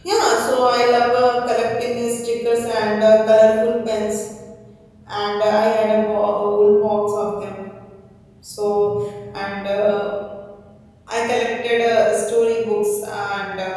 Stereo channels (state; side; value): identical; both; correlation 1.00